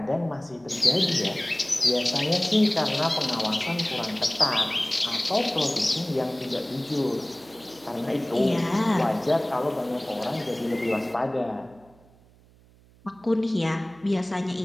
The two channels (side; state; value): right; noise; hum, 28 dB below the sound